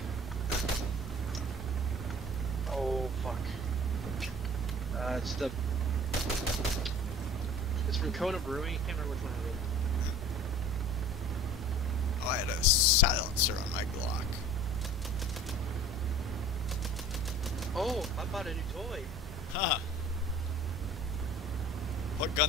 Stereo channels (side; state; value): both; normal; correlation 0.45